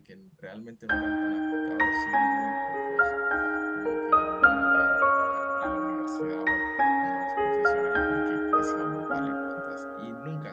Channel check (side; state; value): both; identical; correlation 1.00